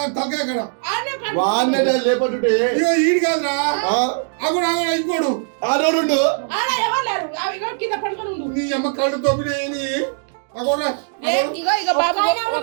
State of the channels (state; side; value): silent; left; digital silence